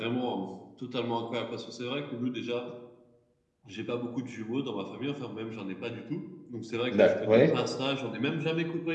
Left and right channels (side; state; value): both; identical; correlation 1.00